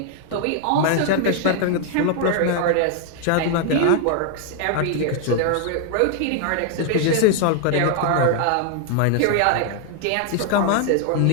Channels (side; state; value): both; different; correlation 0.00